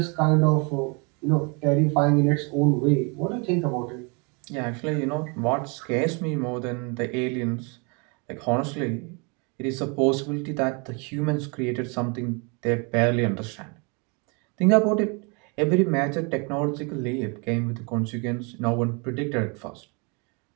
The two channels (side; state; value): left; quieter; 32.5 dB